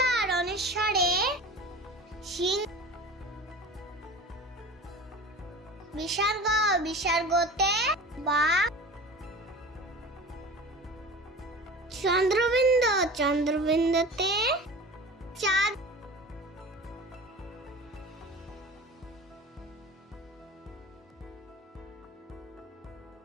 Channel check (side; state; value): both; normal; correlation 0.36